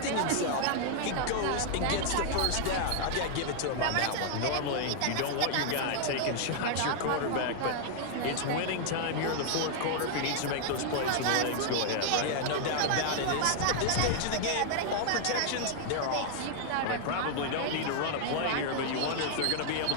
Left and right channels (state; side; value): different; both; correlation 0.00